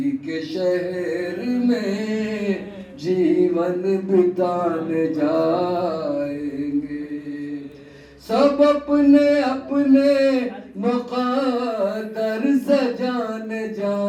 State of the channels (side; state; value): both; identical; correlation 1.00